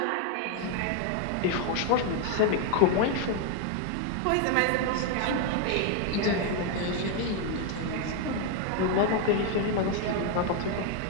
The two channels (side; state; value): both; different; correlation 0.01